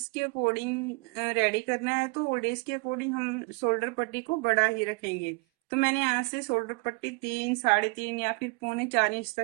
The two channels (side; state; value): left; quieter; 28.7 dB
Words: के अकॉर्डिंग रेडी करना है। तो ओल्ड एज के अकॉर्डिंग हम शोल्डर पट्टी को बड़ा ही रखेंगे। तो मैंने यहाँ से शोल्डर पट्टी 3, 3.5 या फिर पौने 4 इंच